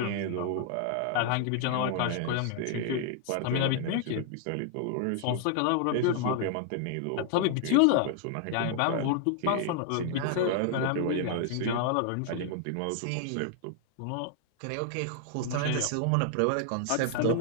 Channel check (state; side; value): different; both; correlation 0.00